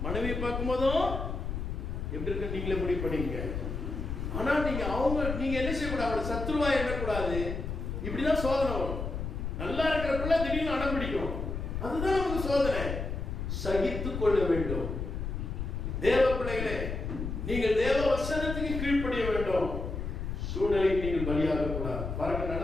மனைவியை பார்க்கும் போதும் எப்படி இருக்கு நீங்களே முடிவு பண்ணீங்க. ஆனா நீங்க என்ன செய்யக்கூடாது? அவளை சத்துருவா எண்ணக்கூடாது. இப்படிதான் சோதனை வரும். நல்லா இருக்கிறப்பல திடீர்னு அடம் பிடிக்கும். அதுதான் நமக்கு சோதனை. சகித்துக் கொள்ள வேண்டும். தேவ பிள்ளைகளே, நீங்கள் தேவ வசனத்துக்கு கீழ்ப்படிய வேண்டும். சூழ்நிலைக்கு நீங்கள் பலியாக கூடாது. பாருங்க,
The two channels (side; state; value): left; noise; rumble, 4 dB below the sound